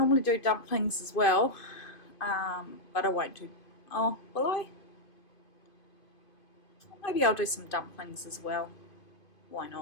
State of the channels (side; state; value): right; late; 2.5 ms